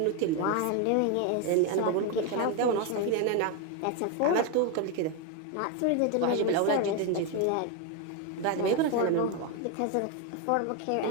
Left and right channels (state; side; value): different; both; correlation 0.02